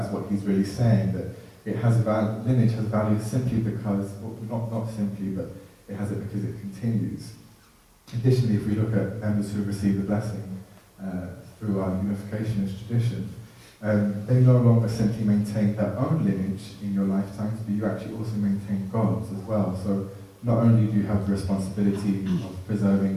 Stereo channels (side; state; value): both; identical; correlation 1.00